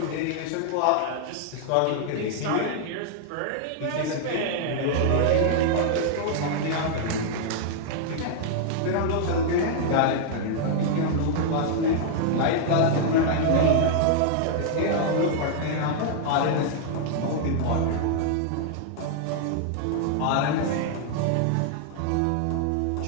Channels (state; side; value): different; both; correlation -0.01